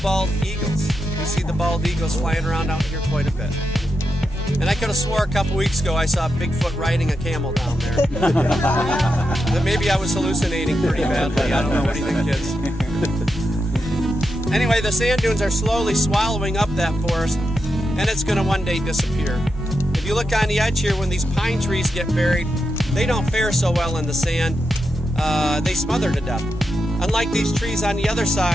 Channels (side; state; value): both; normal; correlation 0.86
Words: bald eagles. You see the bald eagles flying around out here quite a bit. And I could have swore a couple weeks ago I saw Bigfoot riding a camel down there. But maybe I was hallucinating pretty badly. I don't know. What do you think, kids? Anyway, the sand dunes are slowly swallowing up that forest, and it's going to one day disappear. If you look on the edge here, when these pine trees get buried, they don't fare so well in the sand. They smother to death. Unlike these trees on the other